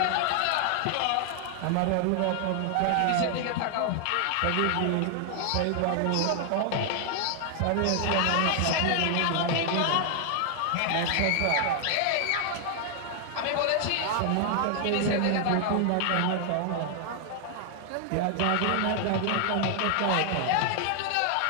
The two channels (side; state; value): both; different; correlation 0.00